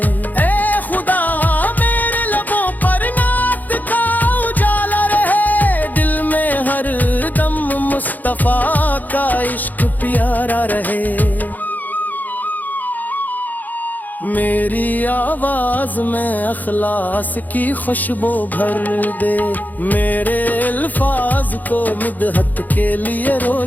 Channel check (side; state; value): right; late; 0.083 ms